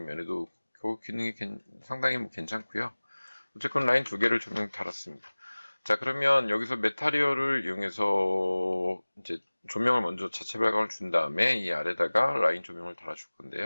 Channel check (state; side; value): inverted; both; correlation -1.00